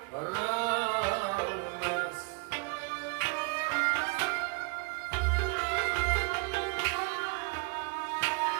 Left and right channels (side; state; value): left; quieter; 30.3 dB